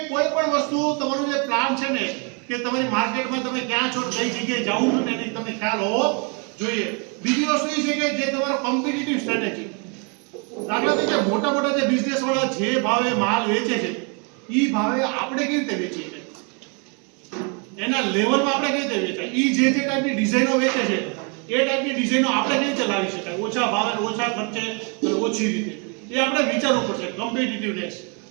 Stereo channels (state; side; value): quieter; left; 35.1 dB